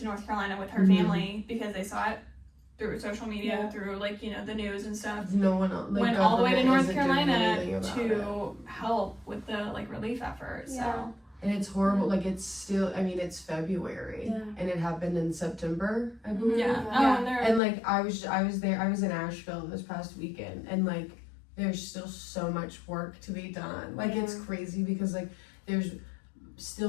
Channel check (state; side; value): drops out; right; at 17.6 s